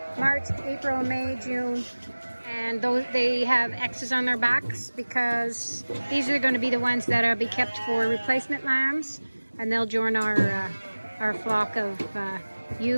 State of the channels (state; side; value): inverted; both; correlation -1.00